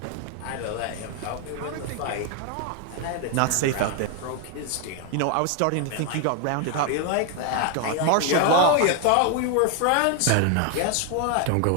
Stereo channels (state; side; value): different; both; correlation 0.00